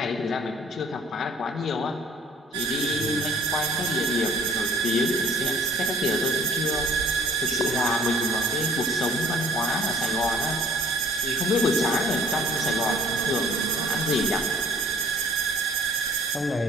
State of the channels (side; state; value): both; normal; correlation 0.54